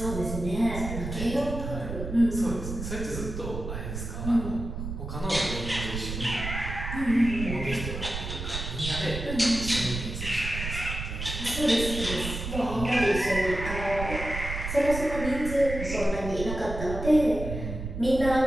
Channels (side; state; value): right; noise; rumble, 6 dB below the sound